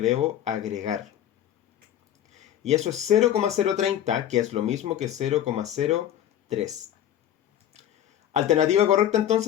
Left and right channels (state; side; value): quieter; right; 11.0 dB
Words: agregar. Y eso es 0,030, que es lo mismo que 0,03. Alternativa correcta